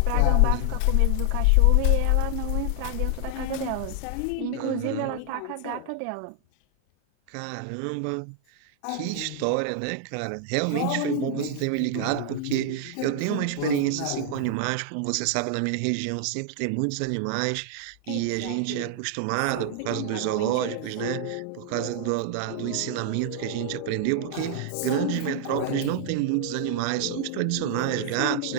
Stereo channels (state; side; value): different; both; correlation 0.00